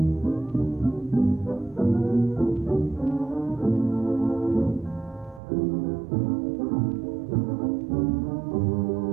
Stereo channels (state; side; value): drops out; left; at 5.4 s